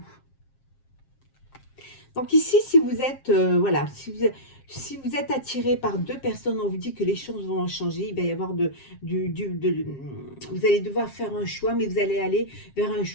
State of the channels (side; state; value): right; late; 7.5 ms